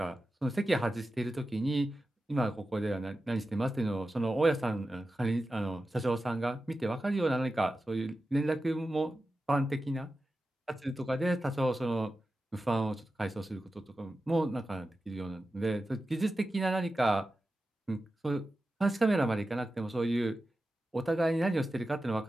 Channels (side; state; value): both; normal; correlation 0.93